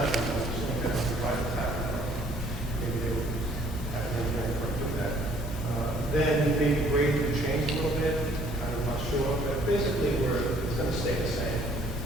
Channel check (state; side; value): normal; both; correlation 0.60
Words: I'm assuming that the private tap, maybe they would have an engineering firm do that. Then maybe grade would change a little bit. I'm not sure, but basically it's going to stay the same.